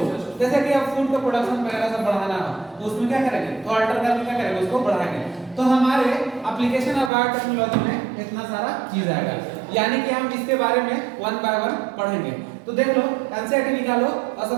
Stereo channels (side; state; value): left; drops out; at 7.1 s